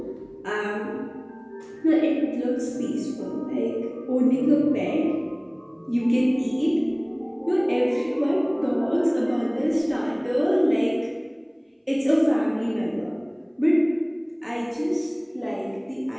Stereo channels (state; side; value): identical; both; correlation 1.00